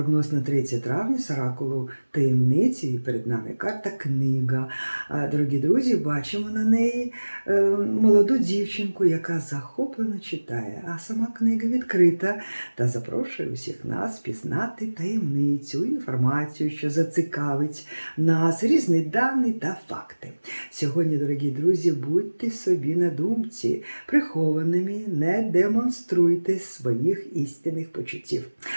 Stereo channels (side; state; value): both; inverted; correlation -1.00